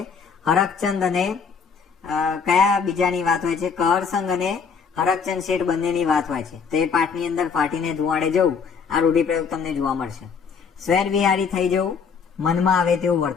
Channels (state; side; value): quieter; right; 6.0 dB